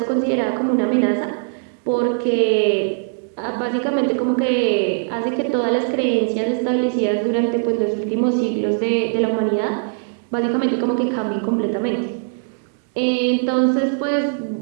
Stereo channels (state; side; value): silent; left; digital silence